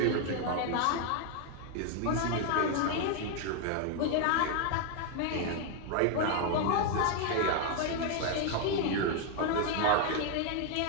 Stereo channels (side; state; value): both; different; correlation 0.00